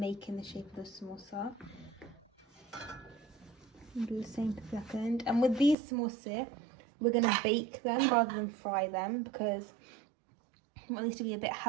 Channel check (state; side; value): drops out; left; at 5.8 s